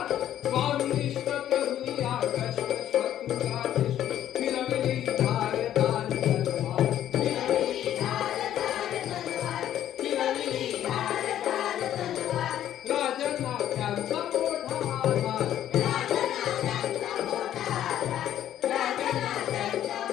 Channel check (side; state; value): right; quieter; 11.4 dB